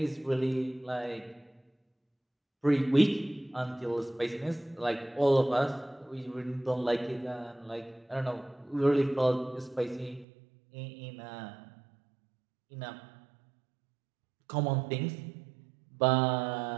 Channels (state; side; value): drops out; left; at 10.2 s